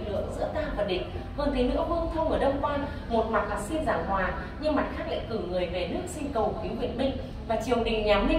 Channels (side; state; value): both; identical; correlation 1.00